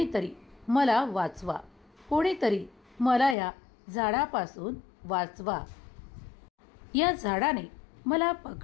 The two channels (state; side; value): drops out; right; at 3.4 s